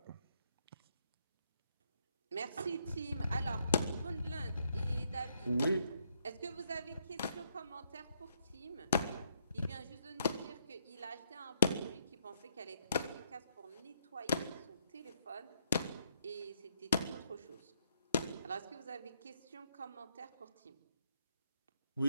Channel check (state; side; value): inverted; both; correlation -0.74